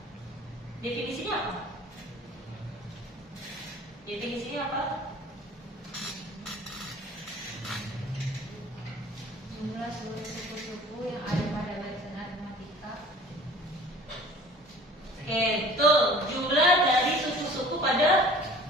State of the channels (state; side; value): normal; both; correlation 0.47